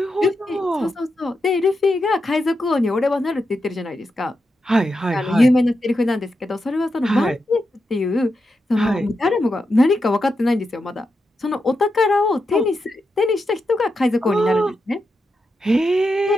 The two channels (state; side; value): normal; both; correlation 0.87